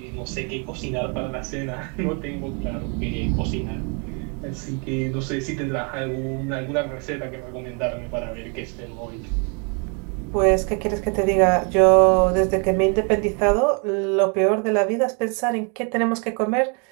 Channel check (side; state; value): left; quieter; 36.0 dB